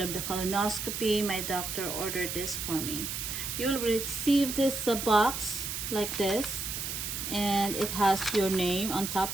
of the colonoscopy, my doctor ordered this for me. You will receive this box like this, and it has your name on top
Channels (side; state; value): right; noise; hiss, 4 dB below the sound